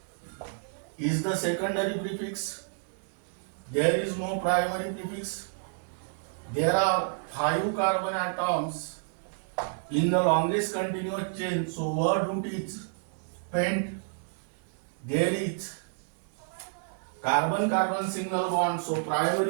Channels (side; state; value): left; silent; digital silence